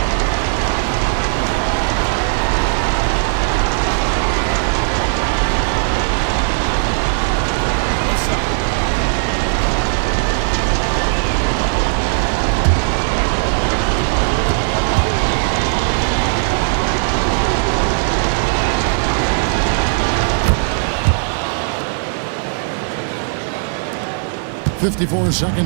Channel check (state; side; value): silent; left; 67 dB below the other